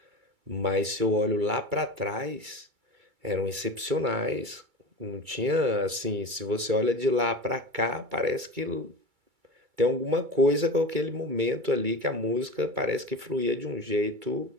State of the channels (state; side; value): late; left; 2.3 ms